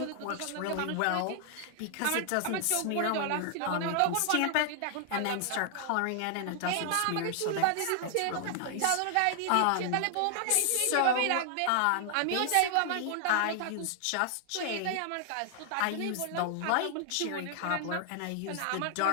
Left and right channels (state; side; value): different; both; correlation 0.00